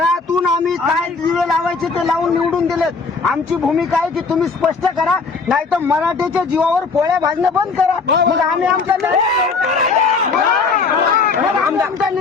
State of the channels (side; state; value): right; quieter; 4.5 dB